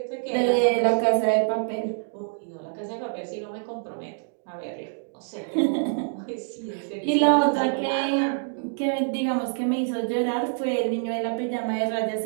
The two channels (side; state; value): left; silent; digital silence